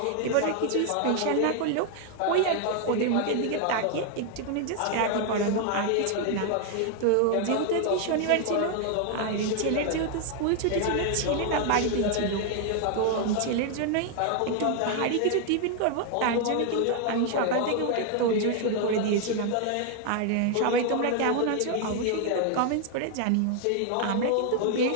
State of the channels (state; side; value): different; both; correlation 0.00